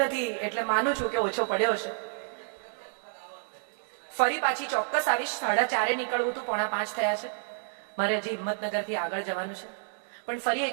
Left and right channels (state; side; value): silent; left; digital silence